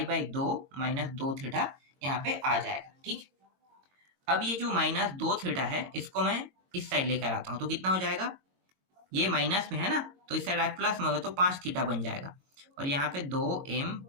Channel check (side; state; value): left; late; 22 ms